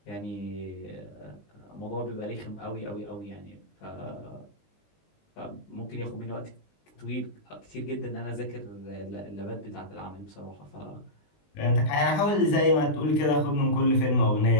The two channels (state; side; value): late; right; 20 ms